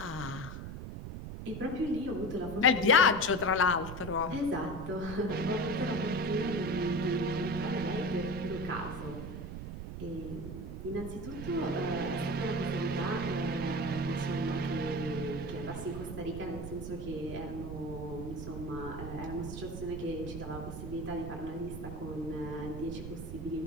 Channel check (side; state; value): right; noise; rumble, 7 dB below the sound